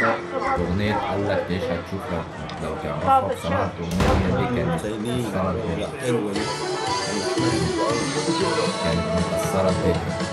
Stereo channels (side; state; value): both; identical; correlation 1.00